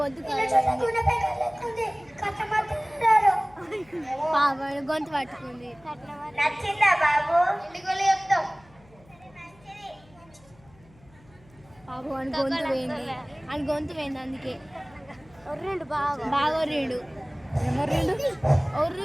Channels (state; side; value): noise; left; hum, 27 dB below the sound